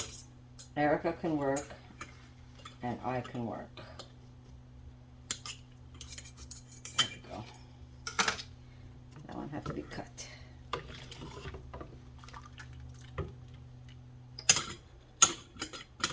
Erica can work, and I can work. There we go. That one had to be cut.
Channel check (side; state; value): both; identical; correlation 1.00